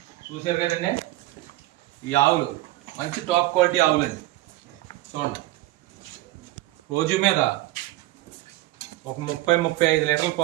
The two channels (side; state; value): left; quieter; 17.2 dB